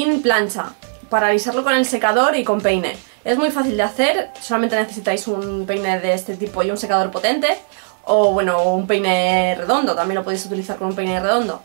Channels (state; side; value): silent; left; digital silence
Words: plancha, para alisarlo con el secador y con peine. Es muy fácil de hacer, solamente necesitáis un peine de este tipo y un secador potente, o bueno, un peine redondo, también lo podéis utilizar con un peine redondo.